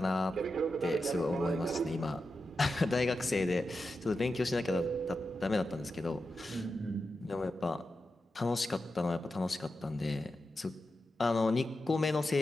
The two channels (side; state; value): both; normal; correlation 0.90